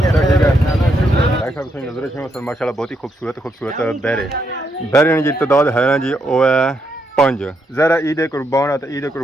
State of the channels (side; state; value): both; normal; correlation 0.78